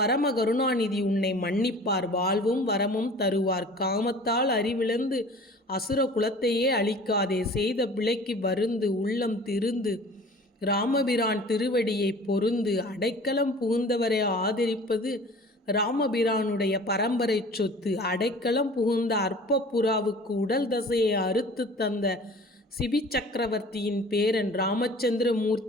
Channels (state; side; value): normal; both; correlation 0.45